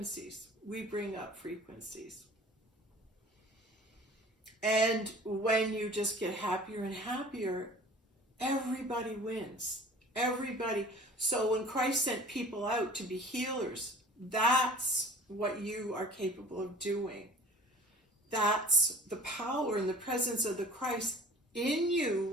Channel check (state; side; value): normal; both; correlation 0.46